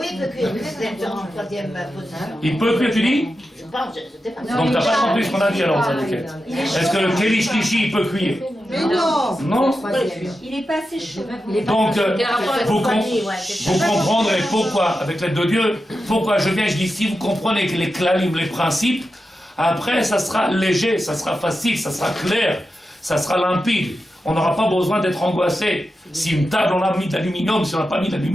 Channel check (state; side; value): normal; both; correlation 0.90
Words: il peut cuire, c'est en troisième position. Il peut cuire, tu dis? Je pense, je sais pas. Donc t'as pas compris ce qu'on a dit alors, ça, est-ce que le Keli Shlishi, il peut cuire? Mais non! Non? Il n'est pas assez chaud. Donc, vous comprendrez pourquoi, avec l'aide de Dieu, pourquoi je viens, je dis, si vous comprenez que les clalim, les principes, après, ça sera léger, ça sera facile, ça sera clair, ça sera limpide. On n'aura pas besoin d'être angoissé. Si une table, on a mis d'aluminium, si on n'a pas mis